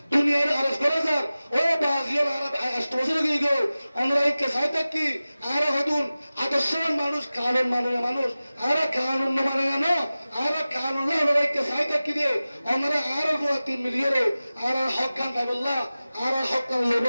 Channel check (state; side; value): inverted; both; correlation -0.96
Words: দুনিয়ার আরজ করা যাক ও বাজিয়ার আরব আষ্টবছর গিয়ে আমরা এই কেসাই থাকি আর হদুন আদর্শবান মানুষ কানুন মানে মানুষ আর কানুন মানে না আর কানুন আমরা এই কেসাই থাকি দিয়ে আমরা আর 3 মিলিয়নে আর হক কান পাইবল্লা আর হক কান